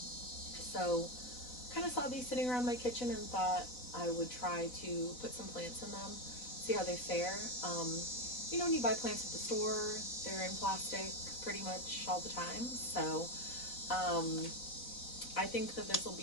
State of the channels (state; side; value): late; right; 4.0 ms